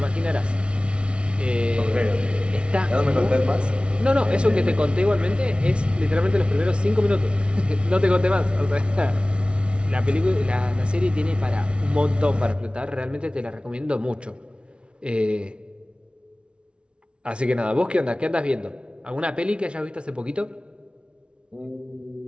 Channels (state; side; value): late; left; 0.058 ms